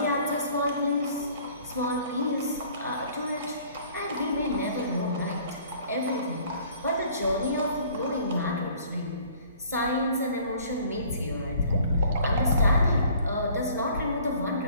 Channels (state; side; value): inverted; both; correlation -0.54